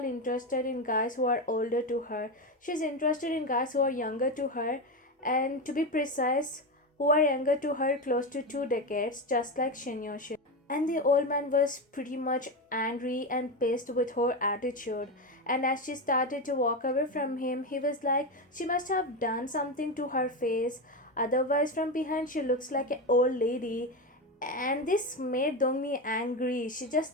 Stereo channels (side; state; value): both; normal; correlation 0.16